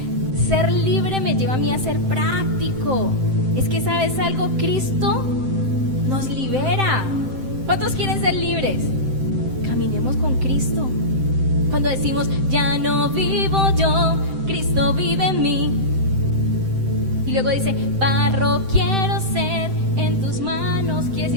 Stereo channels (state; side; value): late; left; 7.7 ms